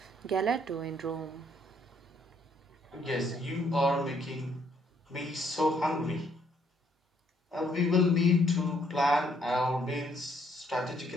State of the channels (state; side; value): normal; both; correlation 0.69